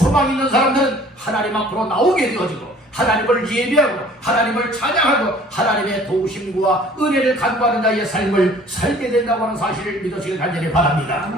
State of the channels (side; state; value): both; normal; correlation 0.52